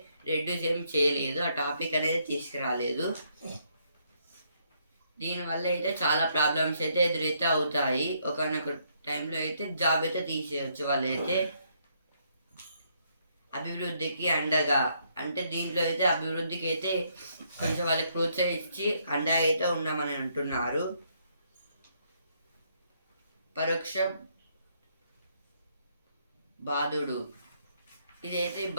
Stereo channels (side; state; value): both; inverted; correlation -0.72